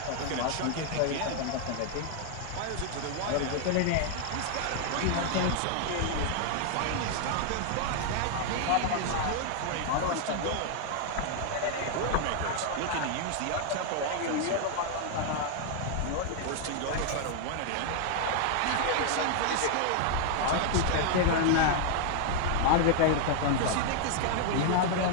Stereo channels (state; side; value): different; both; correlation 0.00